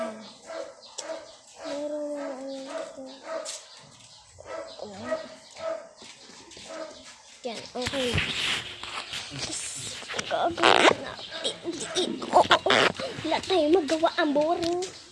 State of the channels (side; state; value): both; identical; correlation 1.00